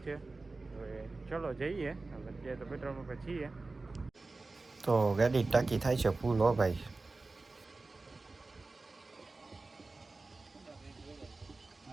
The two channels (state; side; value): quieter; left; 3.5 dB